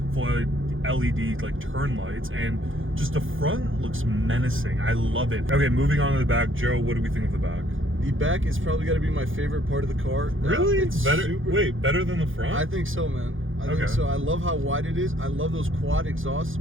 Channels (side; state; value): left; late; 0.58 ms